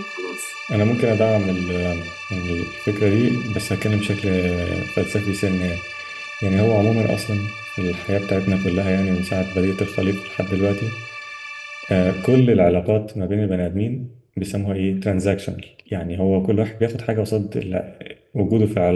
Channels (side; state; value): both; identical; correlation 1.00